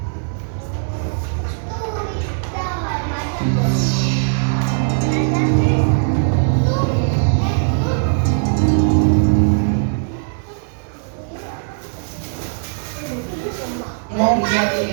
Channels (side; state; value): left; silent; digital silence